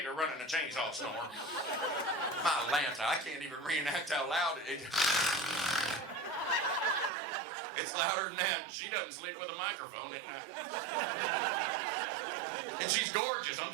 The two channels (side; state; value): left; drops out; at 7.1 s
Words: running a chainsaw snore. My Lanta, I can't even reenact how loud it is. It's louder than that. She doesn't sleep with a microphone at night. And she's gorgeous. I'm